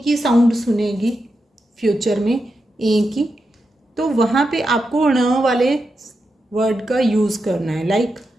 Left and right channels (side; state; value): both; normal; correlation 0.87